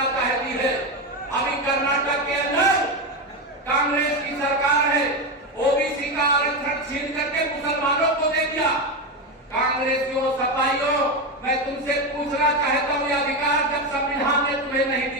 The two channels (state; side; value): normal; both; correlation 0.14